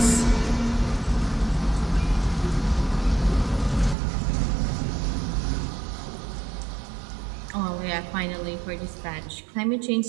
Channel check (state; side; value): drops out; left; at 4.0 s